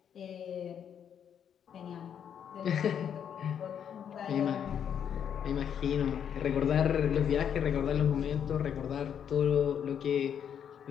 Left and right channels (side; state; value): right; quieter; 8.5 dB